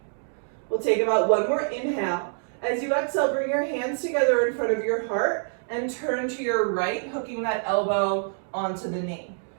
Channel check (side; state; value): left; silent; 61 dB below the other